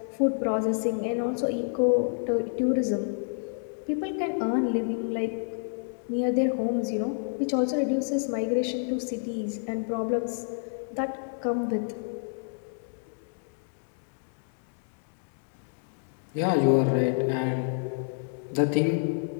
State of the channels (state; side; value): silent; right; digital silence